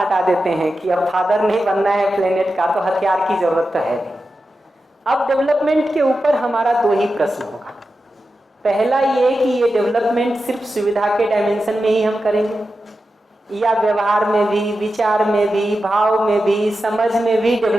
देते हैं कि अब फादर नहीं बनना है प्लेनेट का, तो हथियार की जरूरत तो है नहीं। अब डेवलपमेंट के ऊपर हमारा दो ही प्रश्न होगा। पहला ये कि ये डेवलपमेंट सिर्फ सुविधा के डायमेंशन में ही हम करेंगे, या व्यवहार में भी, विचार में भी, भाव में भी, समझ में भी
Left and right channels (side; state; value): both; normal; correlation 0.91